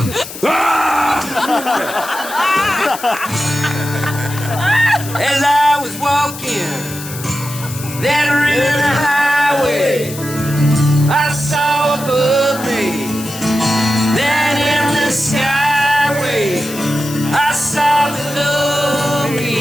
As I was walking that river highway, I saw above me that in the skyway, I saw below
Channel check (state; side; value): noise; left; hiss, 12 dB below the sound